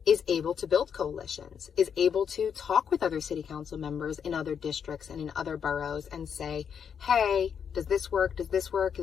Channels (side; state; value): right; quieter; 7.4 dB